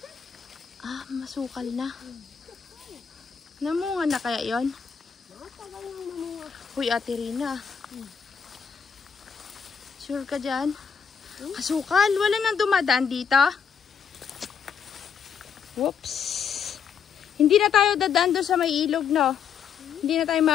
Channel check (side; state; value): right; quieter; 6.9 dB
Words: Ah, masukal na. Namunga na kaya yon? Matagal nang mamunga. Uy, Ate Rina. Sure ka dyan? Masukal. Wala nang dumadaan dito. Whoops. Hindi na tayo dadaan doon sa may ilog, no? Hindi na tayo